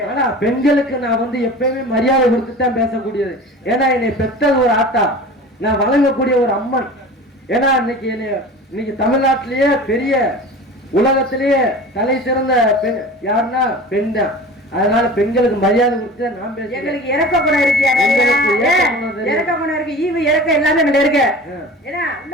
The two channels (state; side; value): normal; both; correlation 0.37